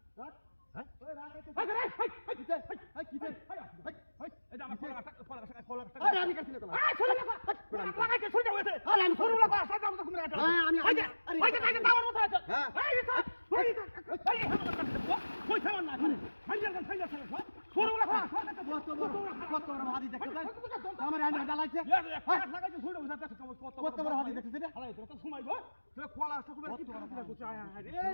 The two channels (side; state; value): both; inverted; correlation -1.00